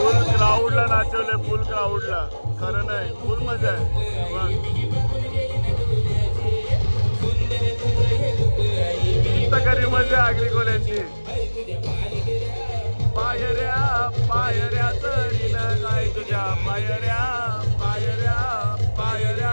क्राऊडला नाचवले, फुल क्राऊडला. खरं नाही, फुल मजा आहे. खरी मजा आगरी कोल्यांची. पायऱ्या पायऱ्या चरीना काय तुझ्या पायऱ्या पायऱ्या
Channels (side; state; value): both; inverted; correlation -1.00